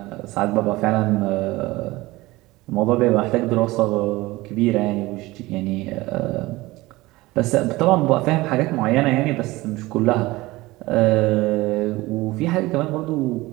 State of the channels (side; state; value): left; quieter; 19.9 dB